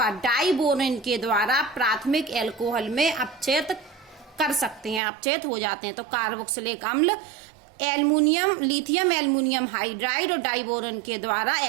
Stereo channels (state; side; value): drops out; left; at 5.0 s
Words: डाइबोरेन के द्वारा प्राथमिक एल्कोहल में अपचयित कर सकते हैं, अपचयित हो जाते हैं। तो कार्बोक्सिलिक अम्ल लिथियम एल्युमिनियम हाइड्राइड और डाइबोरेन के द्वारा